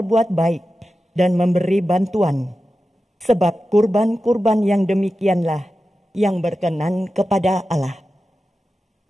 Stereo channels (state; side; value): normal; both; correlation 0.93